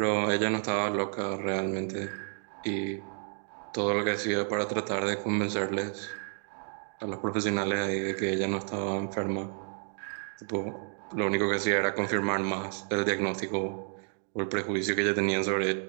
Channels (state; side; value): silent; left; 57 dB below the other